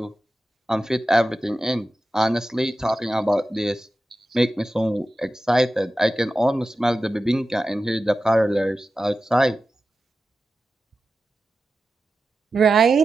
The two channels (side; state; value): both; normal; correlation 0.93